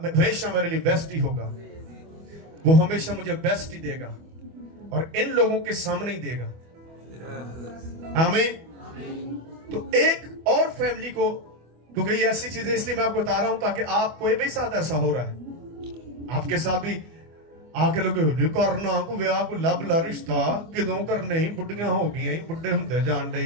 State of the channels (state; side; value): late; left; 25 ms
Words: میرے لیے بیسٹ ہی ہوگا. وہ ہمیشہ مجھے بیسٹ ہی دے گا اور ان لوگوں کے سامنے ہی دے گا. آمین. تو ایک اور فیملی کو, کیونکہ یہ ایسی چیزیں اس لیے میں آپ کو بتا رہا ہوں تاکہ آپ کوئی بھی ساتھ ایسا ہو رہا ہے, آپ کے ساتھ بھی آگے لوگ کرنا کو ویاہ کو لب لا رشتہ کدوں کرنے ہی, بڑھیاں ہو گئی, بڑھے ہوندے جان ڈے,